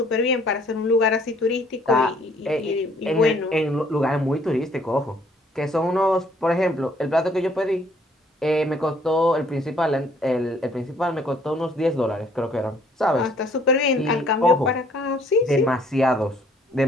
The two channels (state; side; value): normal; both; correlation 0.62